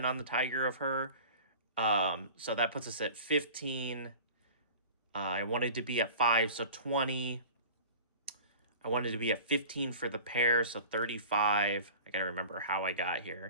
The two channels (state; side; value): inverted; both; correlation -0.40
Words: on the Tiger of her. So that puts us at 15. I wanted to be at 5, so 20. I wanted to be at 15 for the pair, so 35. I gotta remember how I got